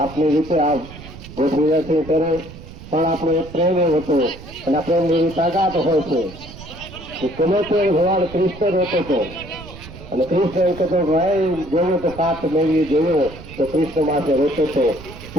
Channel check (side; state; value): right; noise; rumble, 16 dB below the sound